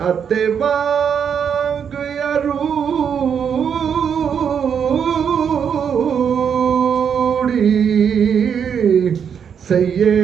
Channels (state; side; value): quieter; left; 7.5 dB